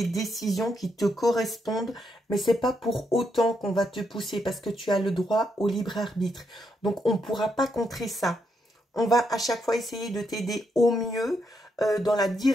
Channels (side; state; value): both; normal; correlation 0.79